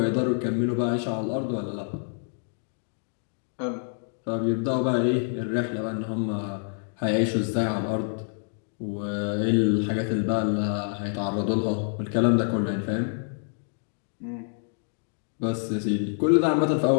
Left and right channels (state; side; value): silent; right; 60 dB below the other